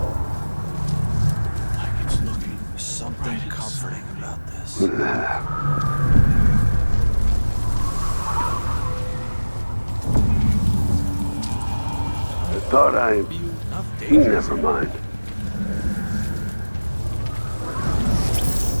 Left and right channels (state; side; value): inverted; both; correlation -1.00